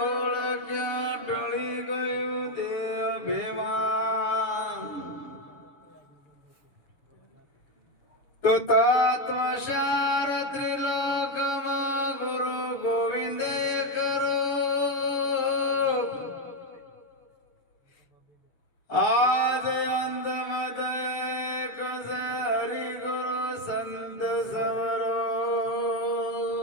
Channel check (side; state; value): right; late; 6.9 ms